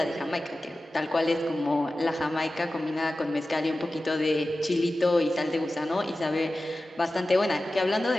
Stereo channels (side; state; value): both; normal; correlation 0.95